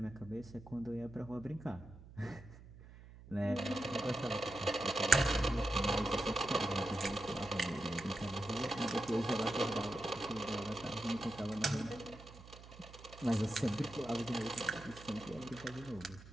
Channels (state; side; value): noise; right; hum, 18 dB below the sound